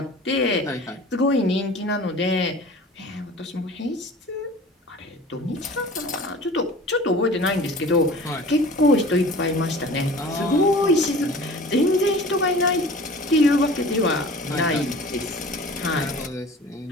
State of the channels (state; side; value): normal; both; correlation 0.42